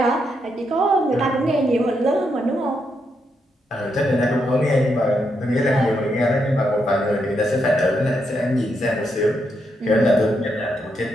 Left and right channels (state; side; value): normal; both; correlation 0.80